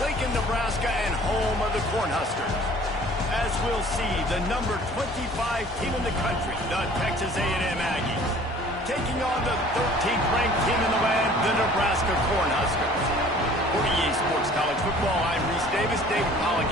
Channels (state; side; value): normal; both; correlation 0.50